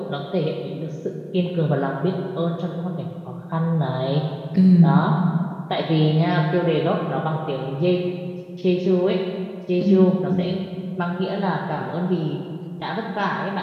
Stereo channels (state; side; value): identical; both; correlation 1.00